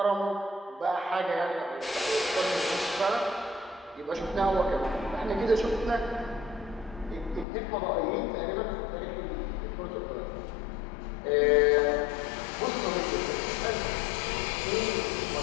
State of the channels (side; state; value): right; drops out; at 7.5 s